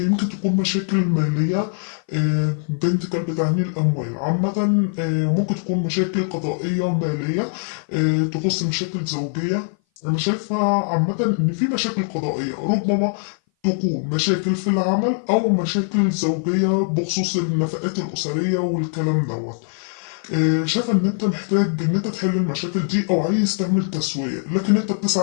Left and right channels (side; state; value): right; silent; 58 dB below the other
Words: يمكن تكون مشاكل مالية. بنت كلب تعني الأموال عامة. ممكن تكون مشاكل قضائية مالية، تخص مشاكل زوجية. أنا شايفة عامة إن في مشاكل قضائية، ربما تكون مشاكل في العمل أو مشاكل زوجية بخصوص النفقات الأسرية والكلام دوت. شايف ان انت محتاج ان انت تحل المشاكل دي او عايز تعمل تسوية، لكن انت